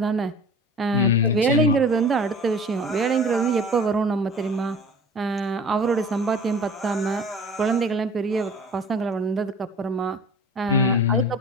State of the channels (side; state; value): both; normal; correlation 0.42